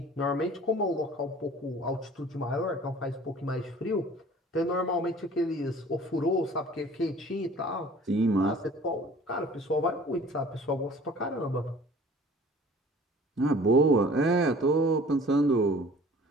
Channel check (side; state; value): both; normal; correlation 0.48